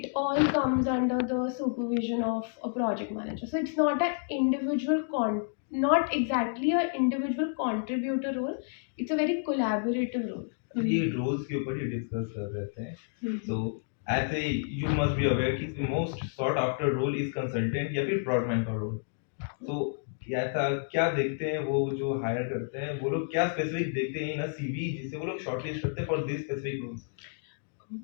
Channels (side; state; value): right; silent; digital silence